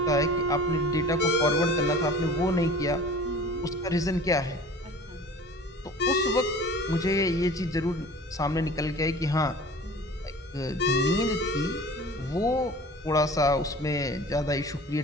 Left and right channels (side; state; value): both; normal; correlation 0.42